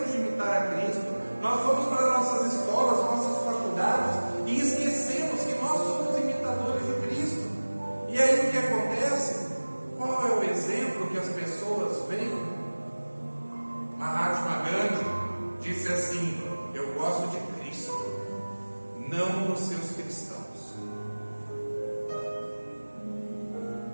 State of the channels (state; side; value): inverted; both; correlation -1.00